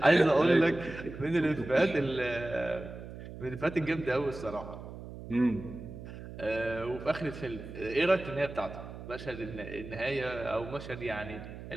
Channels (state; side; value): noise; right; hum, 12 dB below the sound